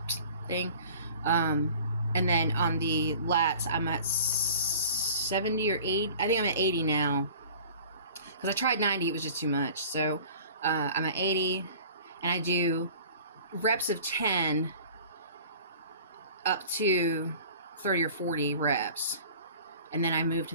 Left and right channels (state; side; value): inverted; both; correlation -0.45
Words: thing. And then on the lats, I'm at 70 or 80. I think I'm at 80 now. Because I tried 90, it was just too much. So I'm at 80, and I do reps of 10 up to 30 or 40 reps, and then I move to